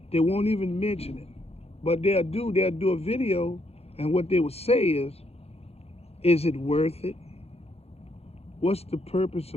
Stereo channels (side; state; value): right; late; 0.29 ms